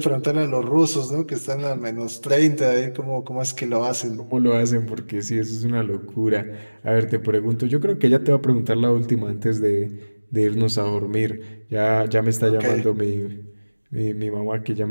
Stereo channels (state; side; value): inverted; both; correlation -1.00